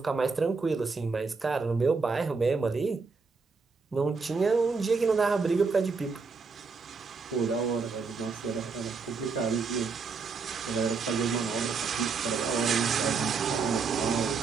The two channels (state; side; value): quieter; left; 4.8 dB